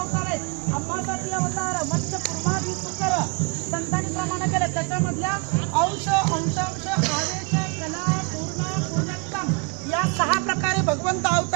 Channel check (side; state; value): left; quieter; 31.7 dB